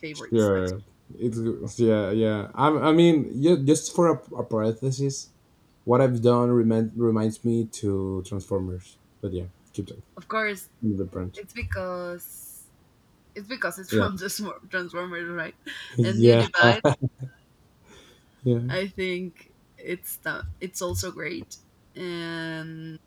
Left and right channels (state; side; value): identical; both; correlation 1.00